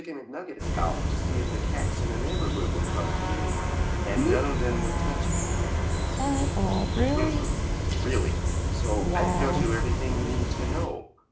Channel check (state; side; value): identical; both; correlation 1.00